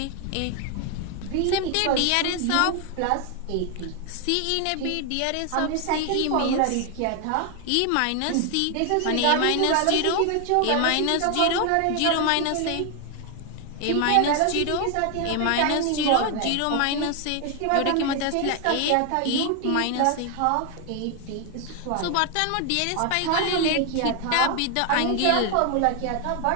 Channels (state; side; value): different; both; correlation 0.01